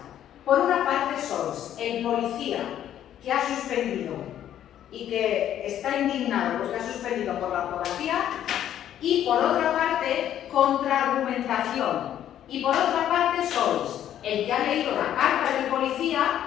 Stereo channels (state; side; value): quieter; right; 11.0 dB